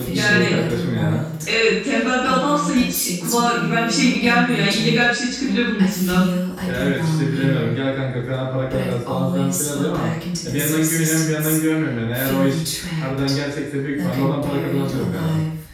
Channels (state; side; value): identical; both; correlation 1.00